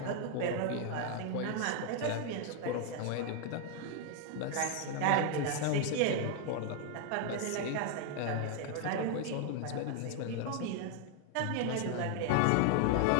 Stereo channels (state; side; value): different; both; correlation 0.00